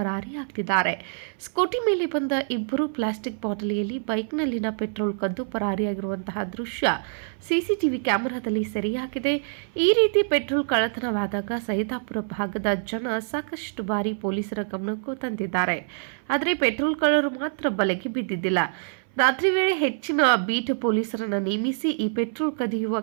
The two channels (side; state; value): left; silent; 58 dB below the other